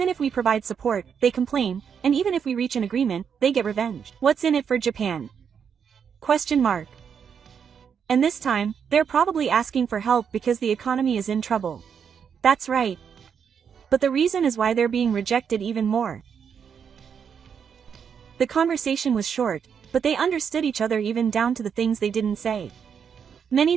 if we provide support, they complain, and even if we reach an agreement, they get revenge. What's in it for Japan? Question mark. And this time, they're probably asking for help because the economy is in trouble. That's right. But the reason is why they're being rejected even more." The conversation was short, but they understood each other even down to the things they didn't say.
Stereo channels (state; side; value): quieter; left; 7.2 dB